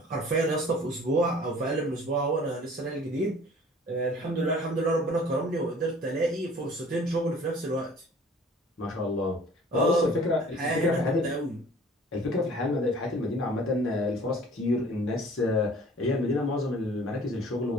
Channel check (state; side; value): normal; both; correlation 0.50